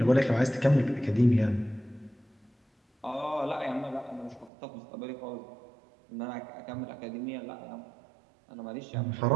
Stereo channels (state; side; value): drops out; left; at 4.5 s